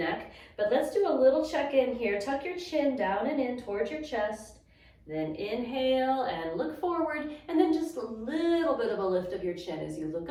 But let's do a little check-in here. Tuck your chin down and in towards your chest. Then inhale and look forward, and then just a little bit of a lift of your chin as you look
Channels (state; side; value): identical; both; correlation 1.00